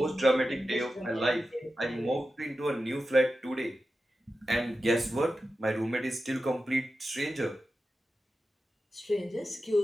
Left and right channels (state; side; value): normal; both; correlation 0.92